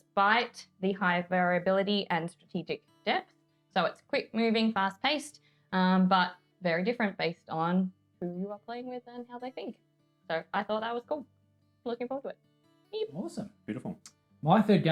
the high variability and strategic depth. So it's quick moving, fast paced, but very different based on who you are playing with and how they think. So I thought that was cool. Looking forward to it. Yep. Awesome. Beautiful. My third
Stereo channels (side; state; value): both; identical; correlation 1.00